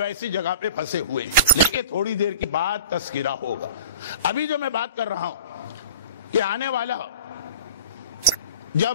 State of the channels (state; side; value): inverted; both; correlation -0.40